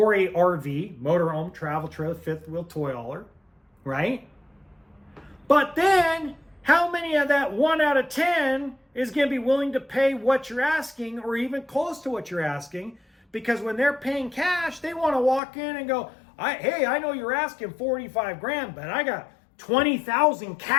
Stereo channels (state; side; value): drops out; right; at 15.4 s